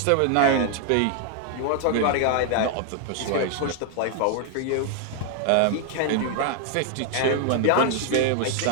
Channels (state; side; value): different; both; correlation 0.00